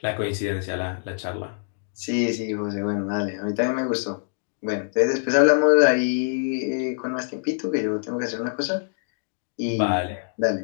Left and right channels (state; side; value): silent; right; digital silence